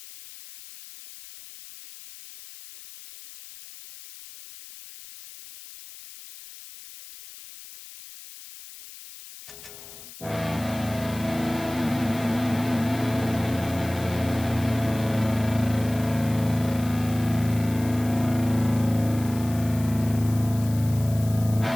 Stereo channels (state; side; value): noise; left; hiss, 16 dB below the sound